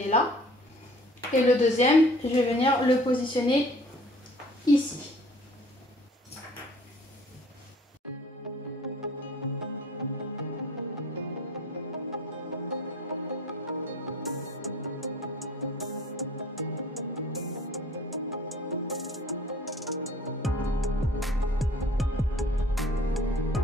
là. Et le deuxième, je vais venir le positionner ici.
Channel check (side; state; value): both; normal; correlation 0.51